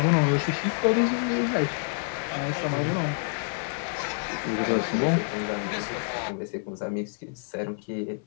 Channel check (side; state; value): right; silent; 57 dB below the other